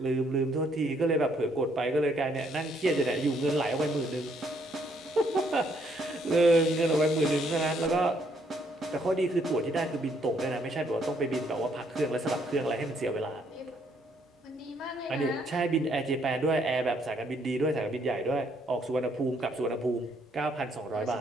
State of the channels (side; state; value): both; normal; correlation 0.69